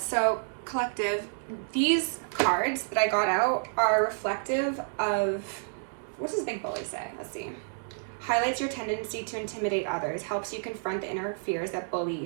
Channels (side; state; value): left; silent; digital silence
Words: collective, these cards that I got out are reflective of, what does Big Bully say? Let's see. Highlights your tendency to intimidate others, helps you confront the inner fears that bully